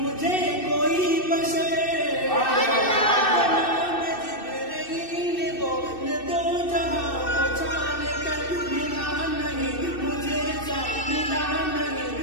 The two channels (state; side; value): late; right; 2.6 ms